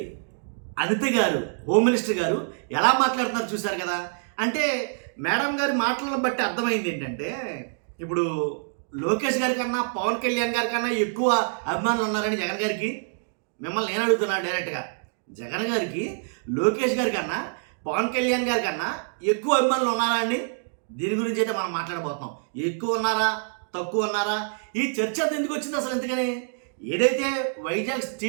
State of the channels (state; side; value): silent; left; digital silence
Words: అనిత గారు, హోమ్ మినిస్టర్ గారు ఎలా మాట్లాడుతున్నారు చూశారు కదా. అంటే మేడం గారి మాటలను బట్టి అర్థమైంది ఏంటంటే, ఇప్పుడు లోకేష్ గారి కన్నా పవన్ కళ్యాణ్ గారి కన్నా ఎక్కువ అభిమానులు ఉన్నారని జగన్ గారికి. మిమ్మల్ని నేను అడుగుతున్నాను డైరెక్ట్గా, జగన్ గారికి లోకేష్ గారి కన్నా పవన్ కళ్యాణ్ గారి కన్నా ఎక్కువ అభిమానులు ఉన్నారా అండి? దీని గురించి అయితే మనం మాట్లాడబోతున్నాం. ఎక్కువ ఉన్నారా, తక్కువ ఉన్నారా, ఈ చర్చ ఎందుకు వచ్చింది అసలు? ఎందుకని ఏదైతే వైజాగ్